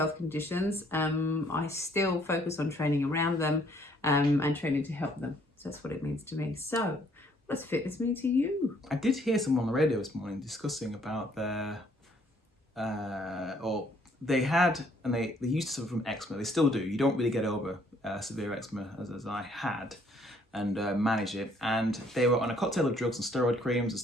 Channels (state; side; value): normal; both; correlation 0.64